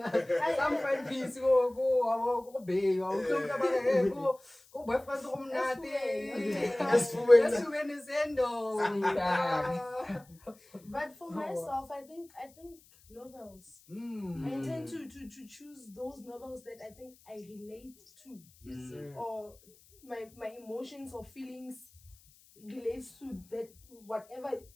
Some find peace. Go, babe. Go, boyfriend. But for myself, I think novels. I tend to choose those novels that I think I relate to. Yes, sir. Or my emotions or feelings relates to that whatever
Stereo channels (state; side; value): noise; left; hiss, 27 dB below the sound